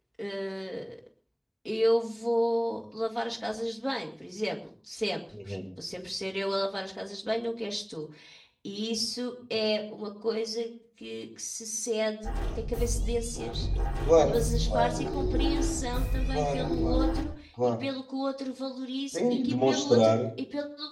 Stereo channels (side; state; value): both; identical; correlation 1.00